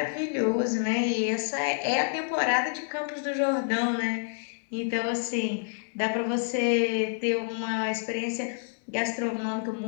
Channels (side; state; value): right; silent; digital silence